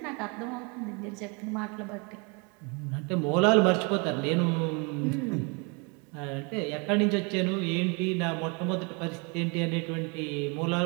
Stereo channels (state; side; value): quieter; left; 31.9 dB